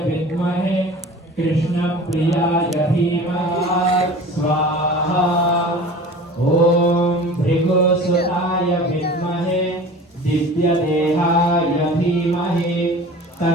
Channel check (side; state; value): both; normal; correlation 0.40